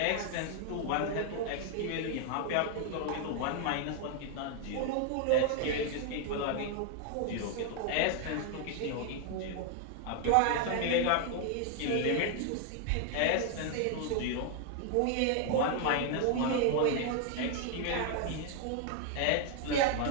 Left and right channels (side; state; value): both; different; correlation 0.00